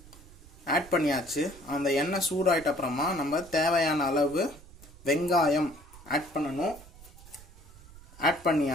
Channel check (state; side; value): noise; right; rumble, 20 dB below the sound